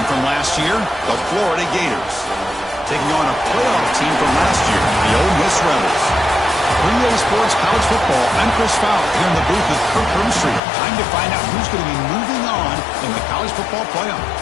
from last year, the Florida Gators, taking on a playoff team from last year, the Ole Miss Rebels. 3A Sports College Football, I'm Chris Fowler here in the booth with Kirk Herbstreit. Time to find out who's going to be moving on in the college football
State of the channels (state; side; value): drops out; right; at 10.6 s